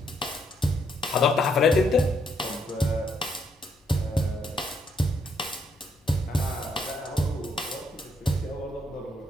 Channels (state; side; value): normal; both; correlation 0.74